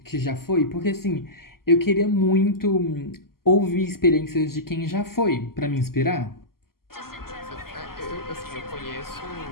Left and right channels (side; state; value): right; late; 0.92 ms